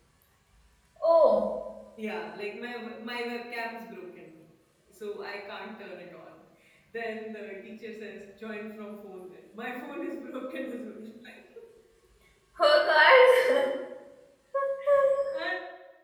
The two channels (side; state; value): both; identical; correlation 1.00